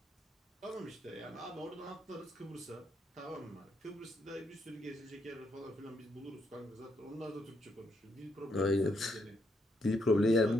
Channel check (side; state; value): both; normal; correlation 0.77